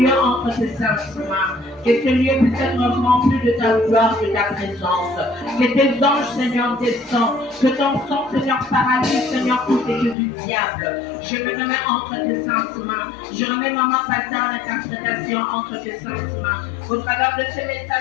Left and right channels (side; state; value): right; drops out; at 10.2 s